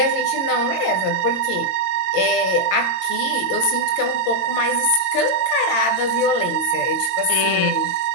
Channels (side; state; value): right; late; 22 ms